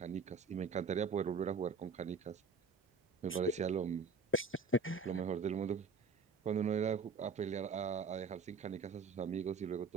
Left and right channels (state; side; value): quieter; left; 4.8 dB